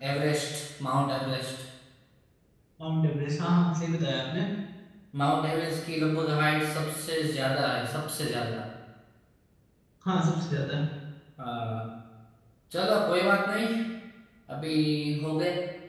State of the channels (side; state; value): both; identical; correlation 1.00